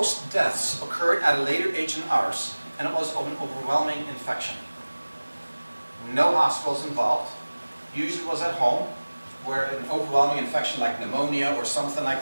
deaths occurred at a later age than ours, and it was of an overwhelming infection. No hospitals involved, usually was at home, where an overwhelming infection like pneumonia or something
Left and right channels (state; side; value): inverted; both; correlation -1.00